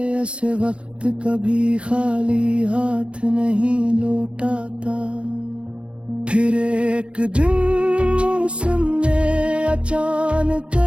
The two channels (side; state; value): left; late; 0.058 ms